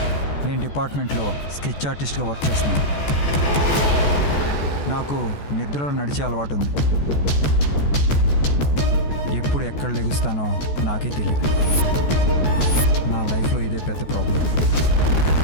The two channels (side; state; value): right; late; 14 ms